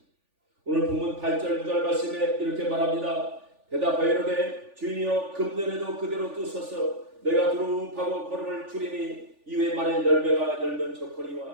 오늘 본문 8절 9절 말씀에 이렇게 말합니다. 대답하여 이르되 주인이여 금년에도 그대로 두소서 내가 두루하고 걸음을 줄이니 이후에 만일 열매가 열면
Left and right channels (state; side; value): late; left; 3.4 ms